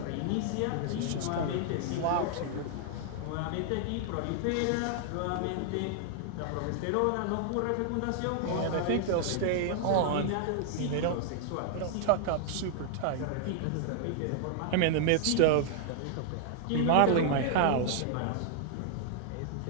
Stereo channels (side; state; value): both; different; correlation 0.00